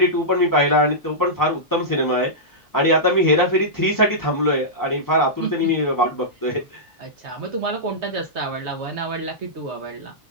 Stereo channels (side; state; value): both; normal; correlation -0.13